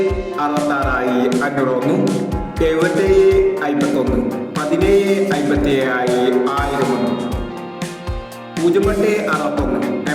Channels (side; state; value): both; identical; correlation 1.00